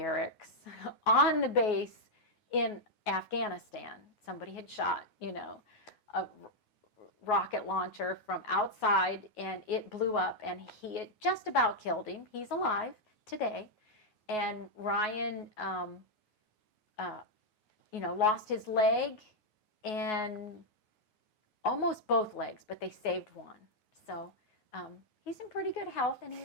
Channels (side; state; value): right; late; 9.4 ms